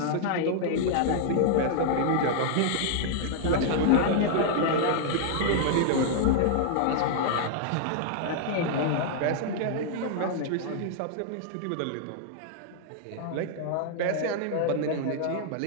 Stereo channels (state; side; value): different; both; correlation -0.01